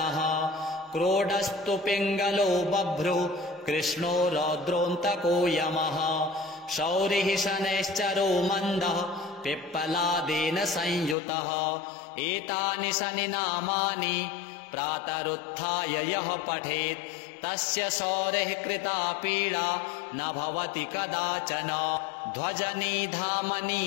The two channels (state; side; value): drops out; right; at 11.2 s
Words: क्रोडस्तु पिङ्गलो बभ्रु कृष्णो रौद्रोऽन्तको यमः शौरिः शनैश्चरो मन्दः पिप्पलादेन संयुतः एतानि शनि नामानि प्रातरुत्थाय यः पठेत् तस्य शौरेः कृता पीडा न भवति कदाचन ध्वजनी धामनी